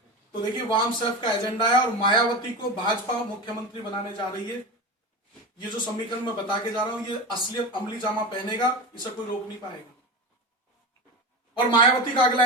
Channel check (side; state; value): both; normal; correlation 0.24